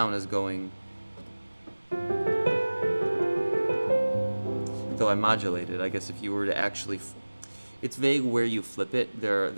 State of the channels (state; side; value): inverted; both; correlation -1.00